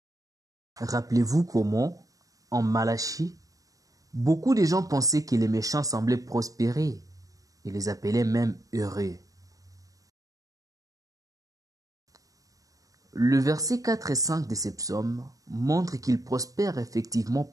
Rappelez-vous comment, en Malachie, beaucoup de gens pensaient que les méchants semblaient prospérer et les appelaient même heureux. Le verset 4 et 5 de ces psaumes montrent qu'ils prospèrent effectivement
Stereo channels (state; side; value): late; left; 0.17 ms